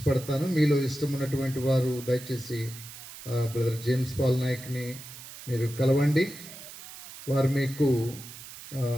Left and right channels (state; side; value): noise; right; hiss, 14 dB below the sound